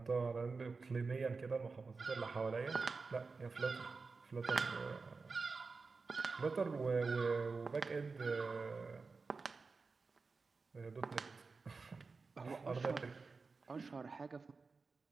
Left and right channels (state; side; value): quieter; left; 4.4 dB